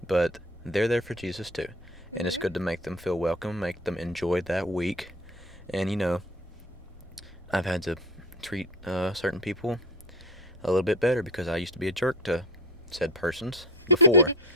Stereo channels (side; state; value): both; normal; correlation 0.31